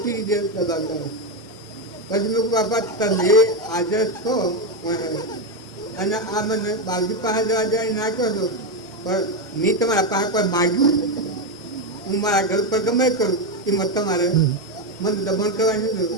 રીતે દબાવતા હોય પછી મેં બાપા તમે હાજર છો અને આ મને બાપજી પાસે જવા જાય નાખ્યો છો પણ મેં તમારા પાસે કોઈ માગ્યું હું મારા ઘર પર ગમે કરું એમાં તમારે મને દબાણ કરવાની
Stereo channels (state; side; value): normal; both; correlation 0.08